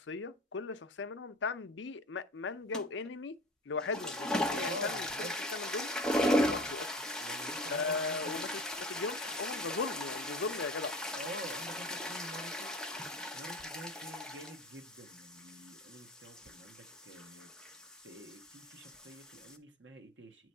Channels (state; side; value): normal; both; correlation 0.38